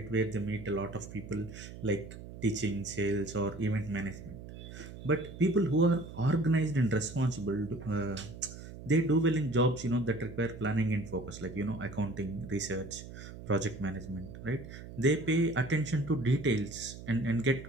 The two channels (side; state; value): right; noise; hum, 13 dB below the sound